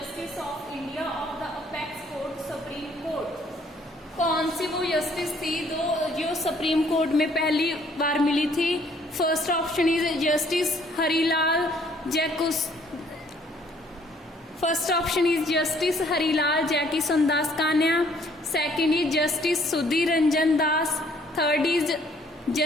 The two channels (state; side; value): normal; both; correlation 0.62